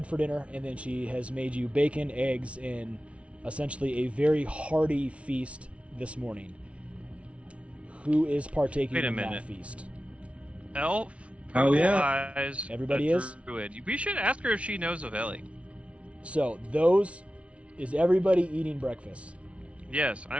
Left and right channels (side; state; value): left; late; 0.062 ms